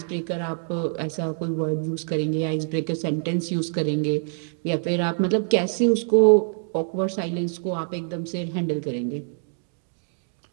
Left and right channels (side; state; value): left; silent; 62 dB below the other